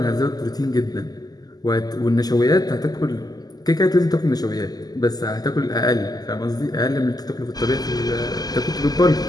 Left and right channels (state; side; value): late; right; 0.19 ms